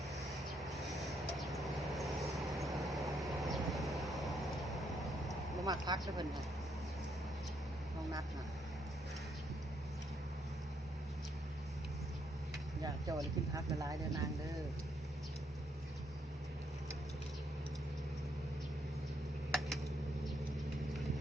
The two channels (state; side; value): normal; both; correlation 0.74